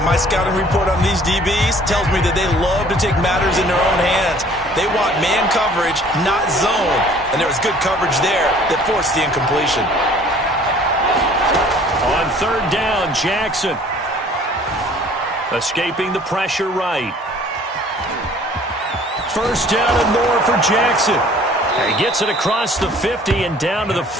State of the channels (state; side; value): normal; both; correlation 0.53